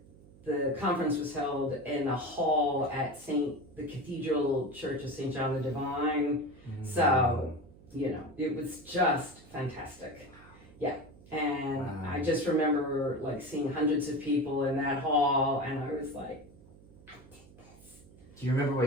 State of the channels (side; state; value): right; noise; hum, 22 dB below the sound